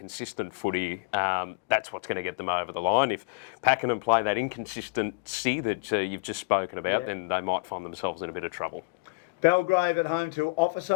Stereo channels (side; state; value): right; quieter; 30.4 dB